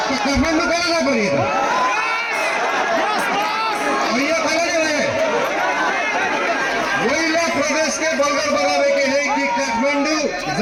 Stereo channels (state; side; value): identical; both; correlation 1.00